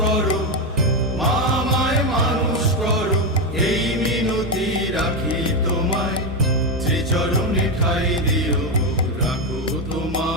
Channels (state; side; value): normal; both; correlation 0.10